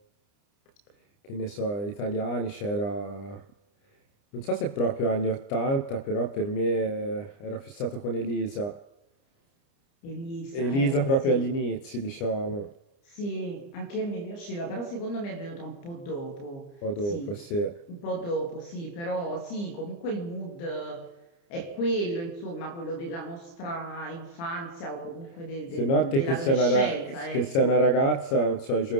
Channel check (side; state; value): right; late; 29 ms